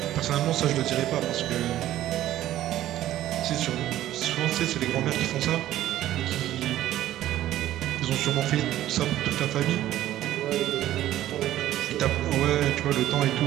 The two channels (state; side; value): quieter; left; 13.5 dB